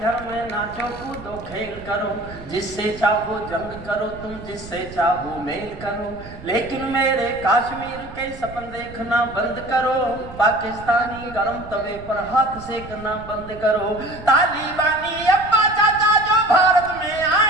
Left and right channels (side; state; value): right; noise; rumble, 15 dB below the sound